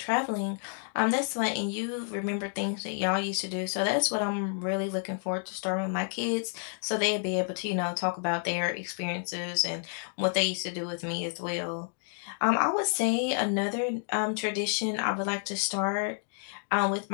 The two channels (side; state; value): right; silent; 58 dB below the other